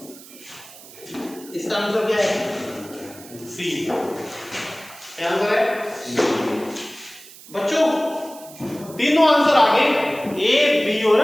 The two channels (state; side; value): noise; right; hiss, 19 dB below the sound